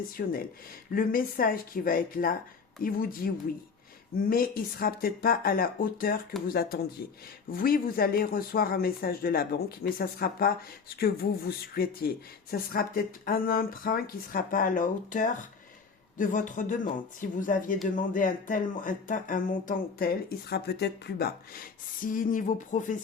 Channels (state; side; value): quieter; right; 5.3 dB